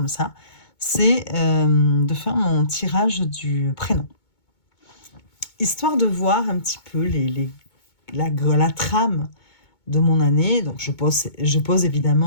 ça, c'est de faire mon tirage du prénom. Histoire de voir un petit peu la trame de mon année. Donc, je pose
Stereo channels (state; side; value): late; right; 2.2 ms